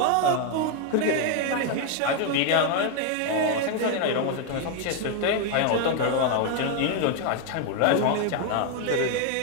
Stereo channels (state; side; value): different; both; correlation 0.01